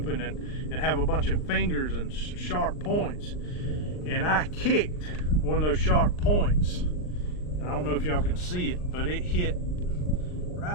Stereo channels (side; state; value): right; late; 39 ms